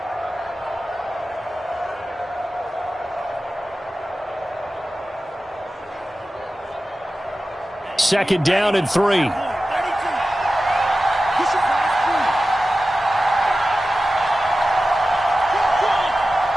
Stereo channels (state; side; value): normal; both; correlation 0.94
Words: Second down and 3.